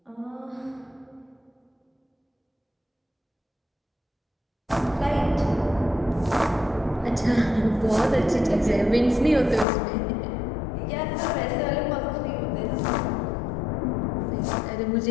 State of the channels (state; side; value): drops out; right; at 9.7 s